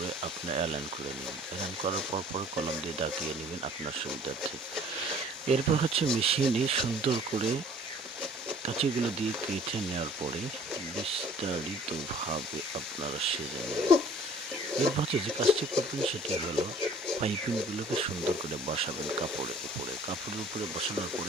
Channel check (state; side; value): normal; both; correlation 0.52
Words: আপনি অ্যালাইন করে নেবেন। অ্যালাইন করার পরে কলম দিয়ে দাগিয়ে নেবেন আপনার সুবিধার্থে। এরপর হচ্ছে মেশিনে সুন্দর করে কাঁচিগুলো দিয়ে কেটে নেওয়ার পরে বিস্তারিতভাবে আপনারা সেজে নেবেন। এরপর হচ্ছে যে কাজটি করবেন সেটি হলো পাইপিংগুলোকে সুন্দর করে বসাবেন কাপড়ের উপরে বসানোর